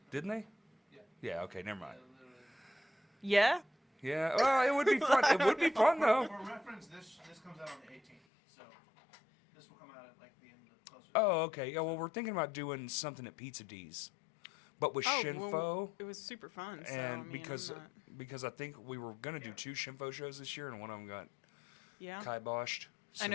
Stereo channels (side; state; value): right; drops out; at 8.2 s